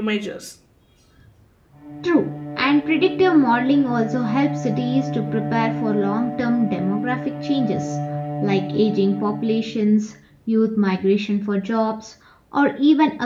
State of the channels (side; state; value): both; identical; correlation 1.00